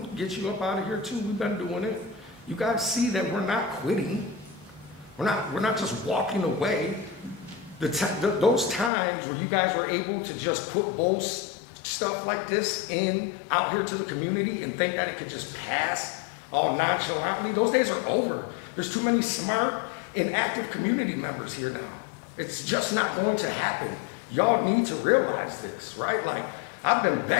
can get you up out of here too. We've been doing it. You guys see that we're not quitting. We're not just walking away. Those times where you guys were able to just put bold stuff like this out here to the community and think that it could just pass all nonchalantly, those days are over. There's too many smart and active community members here now. It's just not going to happen. Y'all need to realize this, right? Like, I've been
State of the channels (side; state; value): right; drops out; at 8.9 s